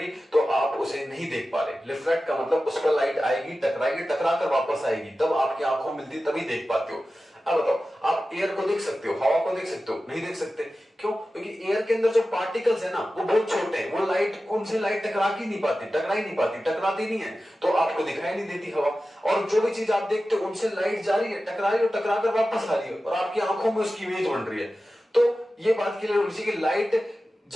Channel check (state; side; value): normal; both; correlation 0.94